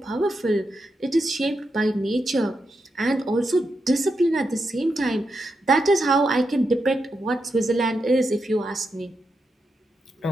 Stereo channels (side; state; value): both; normal; correlation 0.85